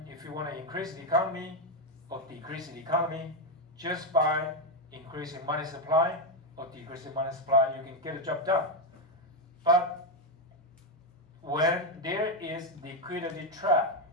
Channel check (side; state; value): both; normal; correlation 0.06